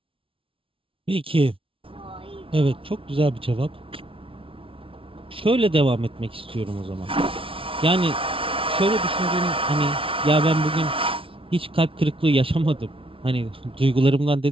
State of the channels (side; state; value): left; late; 0.26 ms